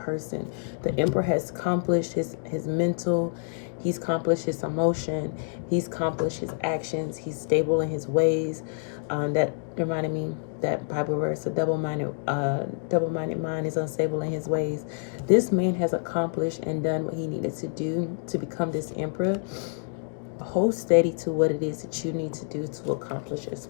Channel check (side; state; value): right; silent; digital silence